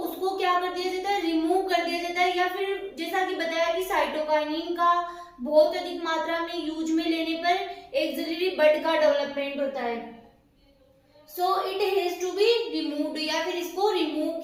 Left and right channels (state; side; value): identical; both; correlation 1.00